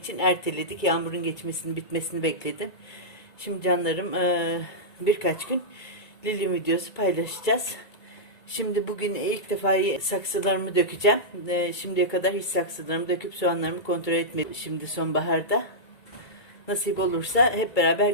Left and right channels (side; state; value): right; late; 2.2 ms